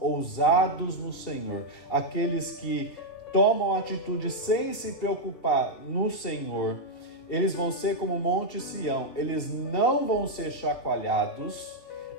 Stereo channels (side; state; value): right; late; 3.3 ms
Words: no Senhor, aqueles que tomam atitude sem se preocupar no Senhor, eles vão ser como o Monte Sião, eles não vão ser chacoalhados,